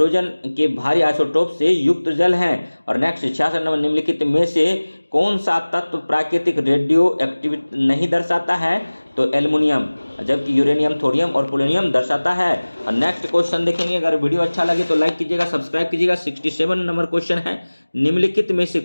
के भारी आइसोटोप से युक्त जल हैं। और नेक्स्ट 66 नंबर, निम्नलिखित में से कौन सा तत्व प्राकृतिक रेडियो एक्टिविटी नहीं दर्शाता है? तो एल्युमिनियम, जबकि यूरेनियम, थोरियम और पोलोनियम दर्शाता है। और नेक्स्ट क्वेश्चन देखेंगे, अगर वीडियो अच्छा लगे तो लाइक कीजिएगा, सब्सक्राइब कीजिएगा। 67 नंबर क्वेश्चन है, निम्नलिखित में से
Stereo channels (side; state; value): both; inverted; correlation -1.00